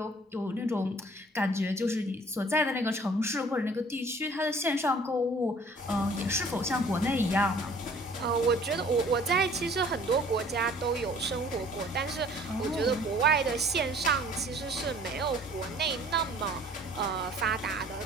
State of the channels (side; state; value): both; normal; correlation 0.53